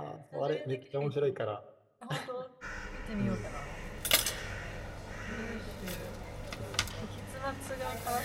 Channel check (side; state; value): both; identical; correlation 1.00